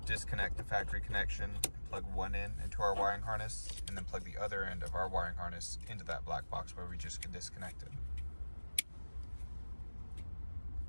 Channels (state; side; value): inverted; both; correlation -1.00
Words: disconnect the factory connection, plug one end into our wiring harness, and then plug the other end of our wiring harness into that black box where we just disconnected.